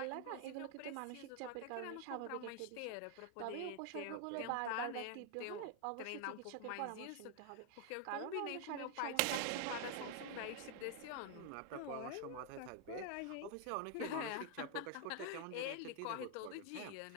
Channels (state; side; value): different; both; correlation 0.00